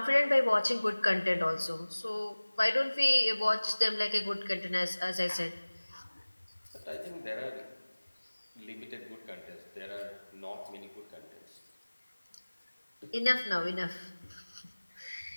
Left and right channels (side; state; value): both; inverted; correlation -1.00